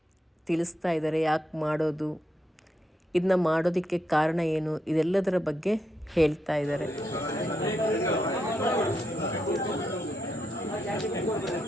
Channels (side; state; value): both; normal; correlation 0.81